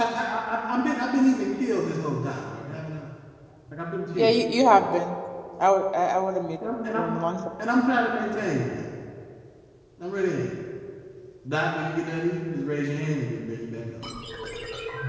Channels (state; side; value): identical; both; correlation 1.00